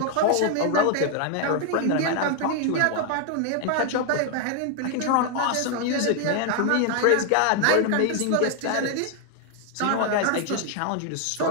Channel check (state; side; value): different; both; correlation 0.00